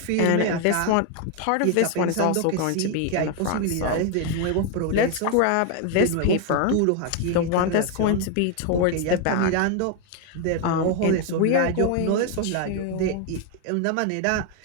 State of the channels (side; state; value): both; different; correlation 0.01